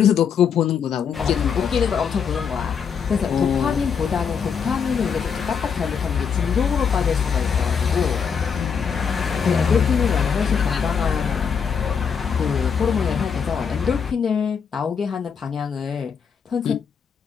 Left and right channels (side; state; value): right; quieter; 6.7 dB